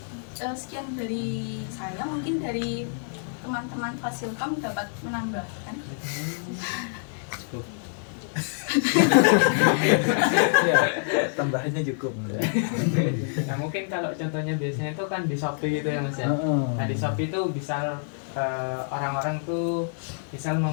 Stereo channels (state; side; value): silent; right; digital silence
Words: sekian dari saya, mungkin dari teman-teman Fasilkom dapat menambahkan. Ya, tambahannya cukup. Nah mungkin kalau contohnya biasanya itu kan di Shopee gitu ya Mas ya. Nah di Shopee itu bisa orang-orang tuh misal